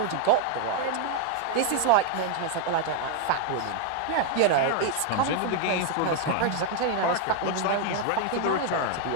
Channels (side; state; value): both; different; correlation 0.00